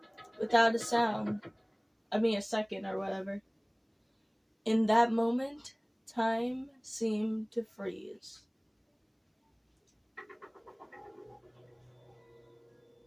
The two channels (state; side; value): identical; both; correlation 1.00